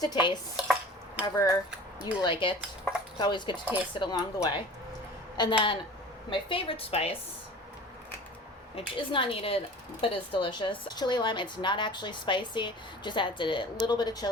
to taste, however you like it. It's always good to taste it along the way. And then my favorite spice, which is not needed but is delicious, chili lime. It's not actually spicy, just adds a little bit of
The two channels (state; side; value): normal; both; correlation 0.41